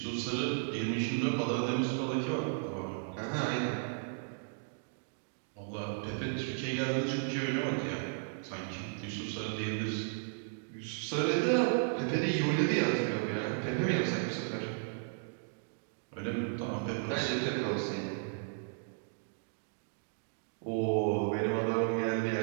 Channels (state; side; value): silent; left; digital silence